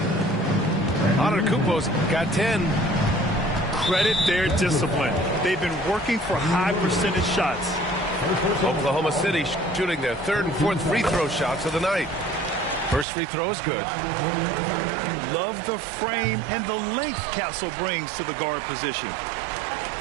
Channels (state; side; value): drops out; left; at 13.1 s